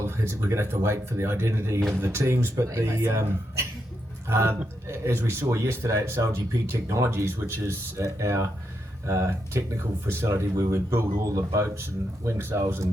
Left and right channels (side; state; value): both; normal; correlation 0.83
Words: we're going to have to wait for the identity of the teams, but as we saw yesterday at SailGP Technologies, which is our technical facility where we build all the boats and wing sails